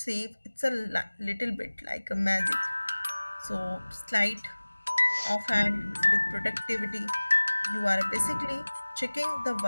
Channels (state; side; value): inverted; both; correlation -1.00